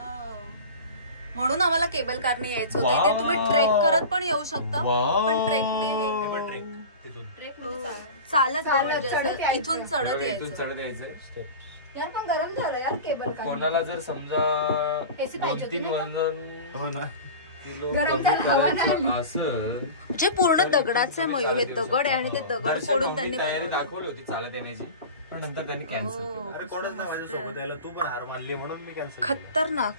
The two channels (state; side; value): inverted; both; correlation -0.32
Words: म्हणून आम्हाला केबल कारने यायचं होतं. इथे तुम्ही ट्रेक करत पण येऊ शकता, पण ट्रेकने चालत इथून चढत यायचं. यार पण गरम झालं यार केबल कार. कोणाला जर समजा 2-3 वजन हो ना म्हणजे पूर्ण दगडाचे मयूर हे दगड आहे आणि ते दगड फोडून त्यांनी तयारी दाखवली होती चालत येण्याची, पण नंतर त्यांनी कॅन्सल केलं. अरे कोणच नाही माझ्यासोबत यायला, तू पण हार मानली म्हणून मी कॅन्सल. खतरनाक.